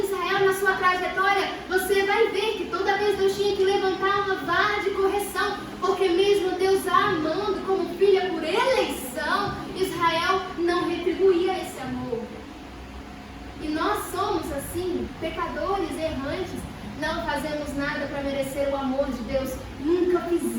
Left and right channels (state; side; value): identical; both; correlation 1.00